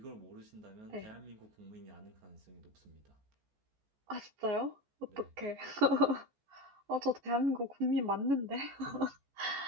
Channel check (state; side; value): late; left; 14 ms